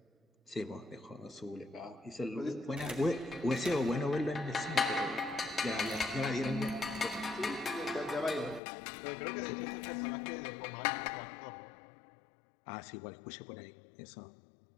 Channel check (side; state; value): right; drops out; at 8.6 s